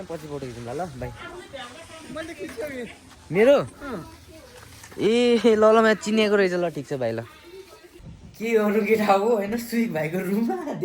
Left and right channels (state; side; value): identical; both; correlation 1.00